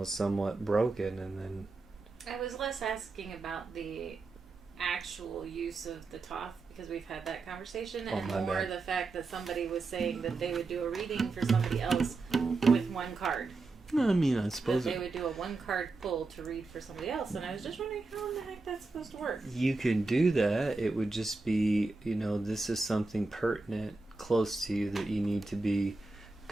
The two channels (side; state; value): left; quieter; 3.6 dB